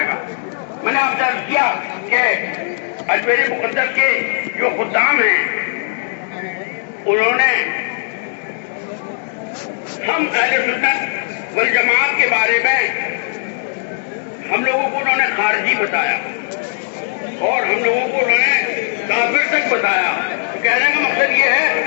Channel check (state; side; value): silent; right; digital silence